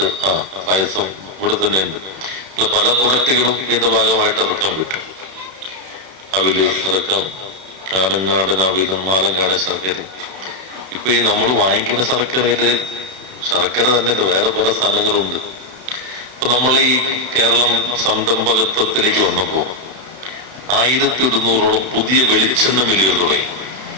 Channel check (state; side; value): late; left; 32 ms